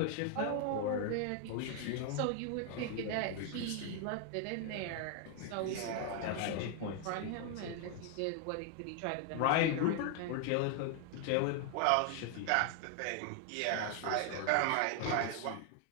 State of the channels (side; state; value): both; different; correlation 0.00